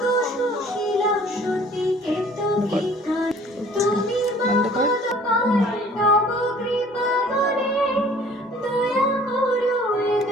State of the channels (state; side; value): normal; both; correlation 0.53